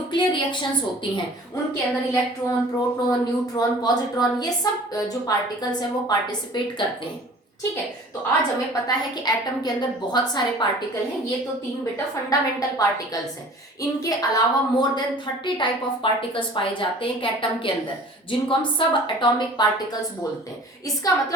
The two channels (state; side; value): normal; both; correlation 0.46